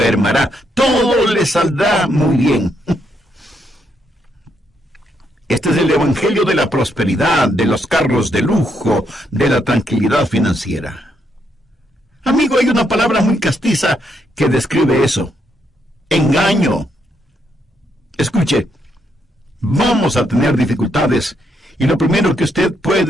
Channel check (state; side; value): normal; both; correlation 0.77